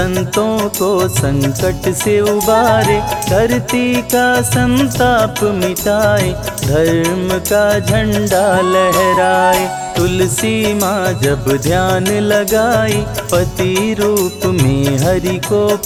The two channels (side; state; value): both; identical; correlation 1.00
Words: को संकट से उबारे। धरती का संताप मिटाए, धर्म का झंडा लहराए। तुलसी माँ जब ध्यान लगाई, पति रूप में हरि को